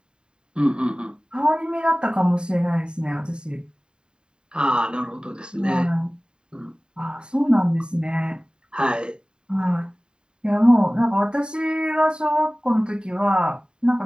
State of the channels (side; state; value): left; late; 0.049 ms